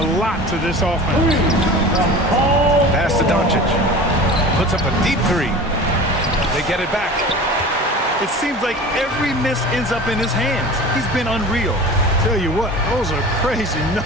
lot to this offense. Pass to Doncic. Puts up a deep 3. They get it back. It seems like every miss ends up in his hands. He's been unreal. Tell you what, those are crazy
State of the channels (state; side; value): normal; both; correlation 0.37